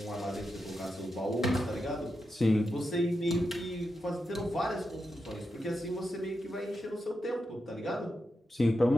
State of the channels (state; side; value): normal; both; correlation 0.87